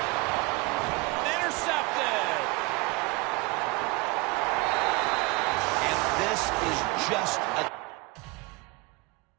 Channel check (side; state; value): left; quieter; 24.9 dB